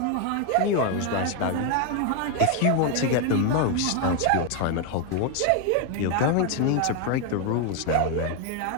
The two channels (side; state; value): both; different; correlation 0.01